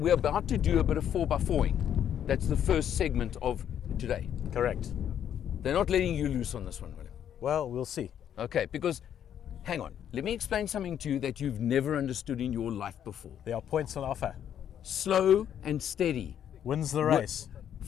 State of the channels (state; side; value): quieter; right; 9.6 dB